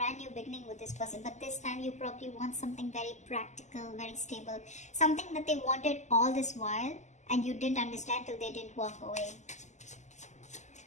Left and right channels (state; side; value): late; right; 0.34 ms